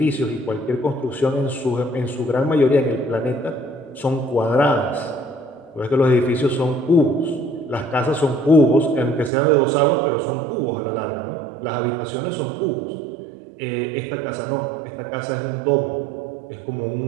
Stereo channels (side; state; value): left; drops out; at 9.3 s